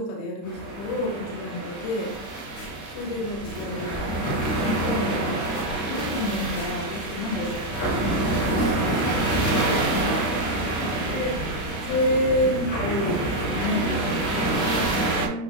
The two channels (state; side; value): late; right; 35 ms